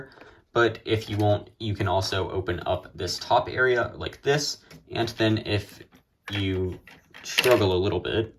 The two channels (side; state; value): both; identical; correlation 1.00